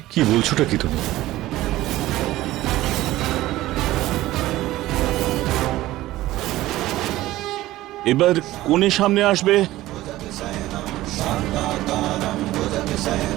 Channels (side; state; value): left; quieter; 16.3 dB